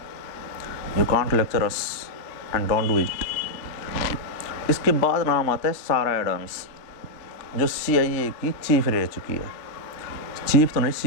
you can't lecture us and don't do it. इसके बाद नाम आता है सारा एडम्स, जो CIA की चीफ रह चुकी है। चीफ तो नहीं,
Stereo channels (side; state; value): right; late; 3.3 ms